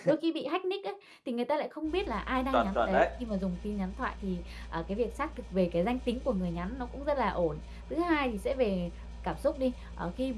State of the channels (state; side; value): identical; both; correlation 1.00